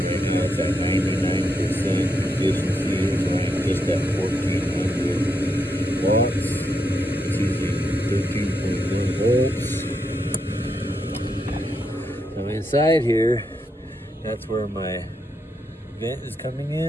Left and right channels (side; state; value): both; normal; correlation 0.81